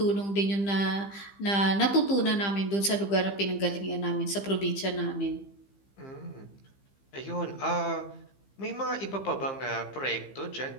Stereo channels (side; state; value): right; late; 15 ms